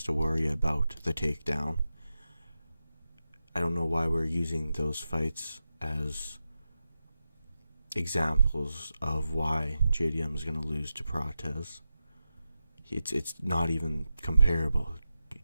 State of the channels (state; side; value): inverted; both; correlation -0.90